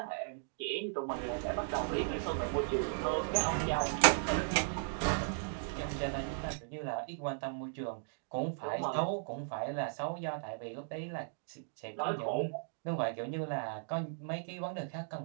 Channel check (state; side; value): silent; left; digital silence